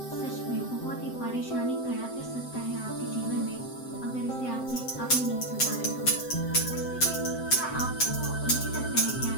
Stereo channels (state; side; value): late; right; 7.8 ms